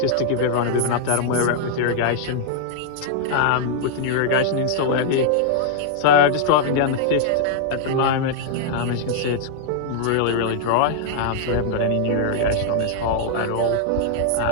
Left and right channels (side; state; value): both; different; correlation -0.01